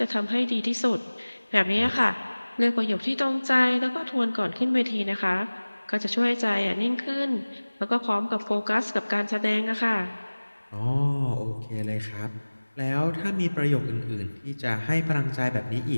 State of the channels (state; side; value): inverted; both; correlation -1.00